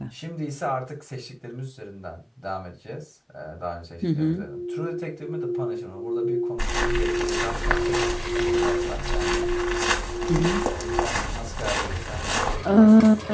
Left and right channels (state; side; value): identical; both; correlation 1.00